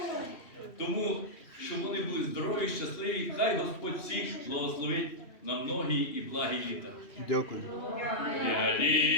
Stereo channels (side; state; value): right; late; 2.8 ms